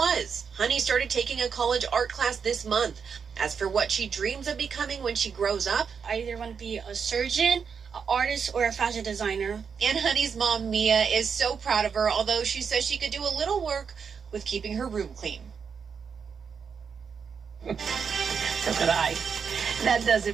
Honey started taking a college art class this month. As for what she dreams of becoming when she grows up, I either want to be a surgeon, an artist, or a fashion designer. And Honey's mom, Mia, is so proud of her, although she says she could do a little work with keeping her room clean. So could I. That does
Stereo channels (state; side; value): quieter; left; 6.3 dB